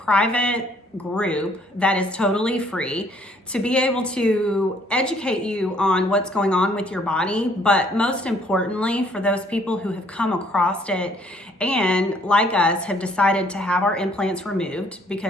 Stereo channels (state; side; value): normal; both; correlation 0.63